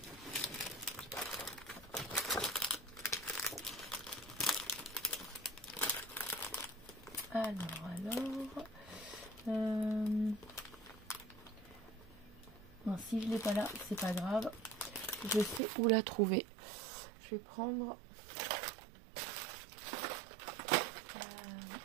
Non, si je l'ai pas là, c'est pas grave. Je sais où la trouver. Je vais prendre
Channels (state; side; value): drops out; left; at 15.6 s